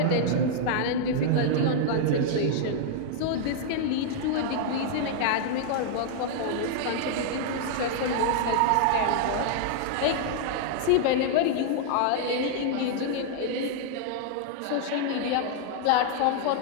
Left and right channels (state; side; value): different; both; correlation -0.01